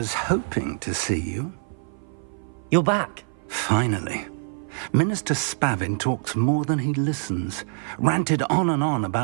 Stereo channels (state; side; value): silent; left; 56 dB below the other